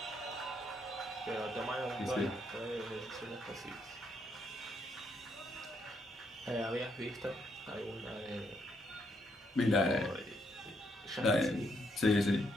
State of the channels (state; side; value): normal; both; correlation 0.75